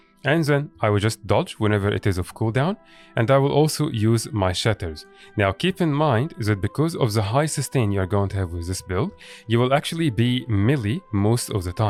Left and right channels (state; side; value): identical; both; correlation 1.00